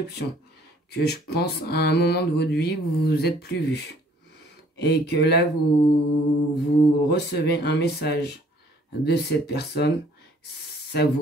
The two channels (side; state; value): both; normal; correlation 0.59